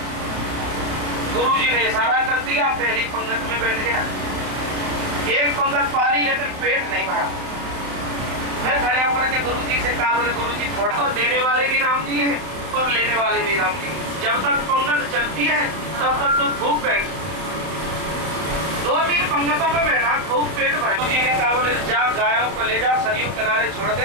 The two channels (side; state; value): left; late; 31 ms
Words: गुरुजी ने इशारा कर दिया, पहली पंगत में बैठ गया। एक पंगत पाली लेकिन पेट नहीं भरा। फिर खड़े होकर के गुरुजी से कहा, बोले गुरुजी थोड़ा तो देने वाले भी राम जी हैं और लेने वाले भी राम जी। जब तक पंगत चलती है तब तक तो खूब बैठ, 2-3 पंगतों में बैठा, खूब पेट भरा। गुरुजी ने कहा, बोले जा गायों को ले जा, सरयू किनारे छोड़